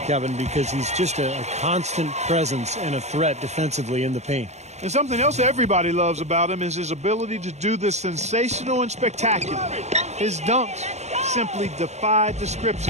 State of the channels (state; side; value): late; left; 0.33 ms